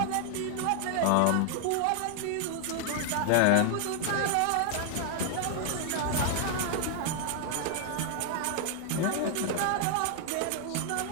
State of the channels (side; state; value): both; different; correlation 0.00